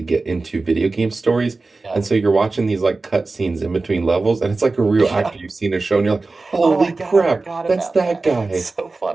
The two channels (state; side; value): quieter; left; 3.6 dB